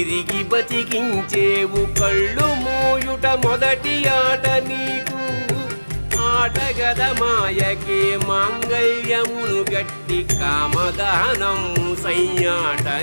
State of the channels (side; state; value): both; inverted; correlation -1.00